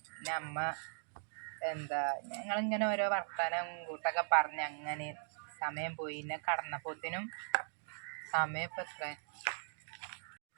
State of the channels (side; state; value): left; silent; digital silence